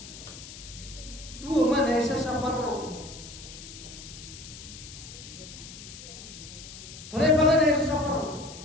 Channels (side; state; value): left; noise; hiss, 14 dB below the sound